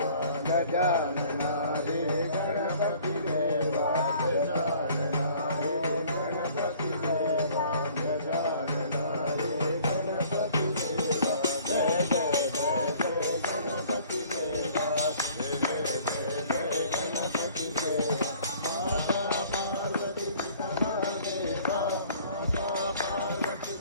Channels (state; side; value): inverted; both; correlation -0.54